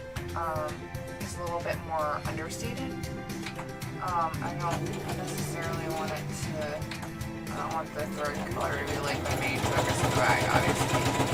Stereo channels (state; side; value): identical; both; correlation 1.00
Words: is a little bit more understated. I don't necessarily want it to, I don't want the thread color to be like the main focus of the bag, obviously.